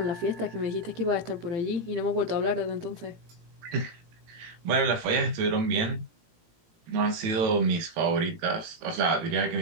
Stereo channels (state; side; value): late; left; 18 ms